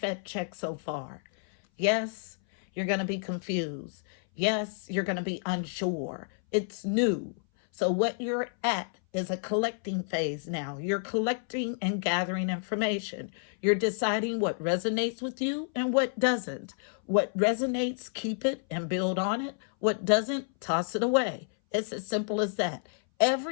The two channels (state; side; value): silent; right; 58 dB below the other